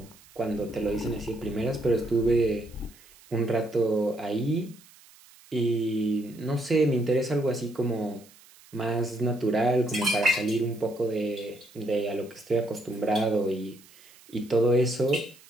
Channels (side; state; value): right; noise; hiss, 25 dB below the sound